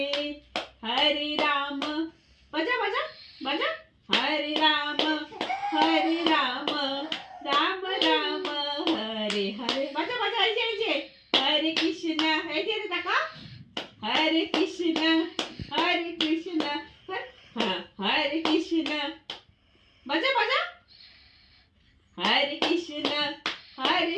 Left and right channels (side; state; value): both; identical; correlation 1.00